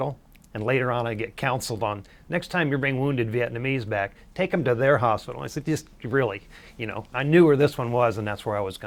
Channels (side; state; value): both; identical; correlation 1.00